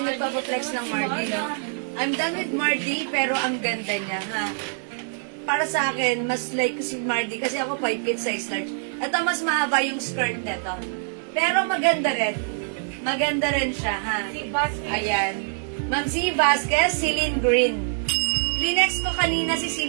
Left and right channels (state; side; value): silent; left; digital silence